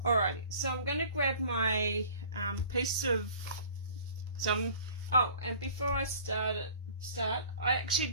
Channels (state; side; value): inverted; both; correlation -0.48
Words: alrighty, so I'm going to grab my piece of oh, and before I start, I actually